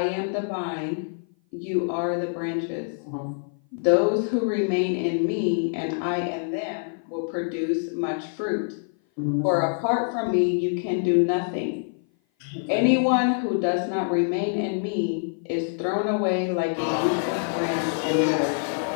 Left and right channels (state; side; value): silent; right; 56 dB below the other